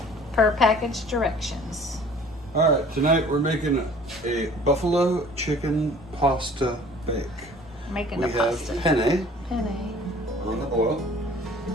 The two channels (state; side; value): normal; both; correlation 0.50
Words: Per package directions. All right, tonight we're making a buffalo chicken pasta bake. Making We the pasta. have penne Penne. on the boil.